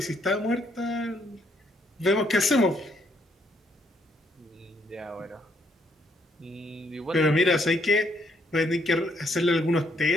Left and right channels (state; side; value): normal; both; correlation 0.71